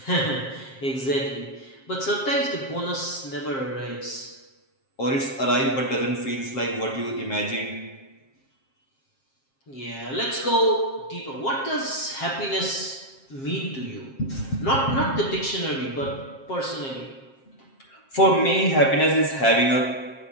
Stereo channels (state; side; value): late; right; 7.5 ms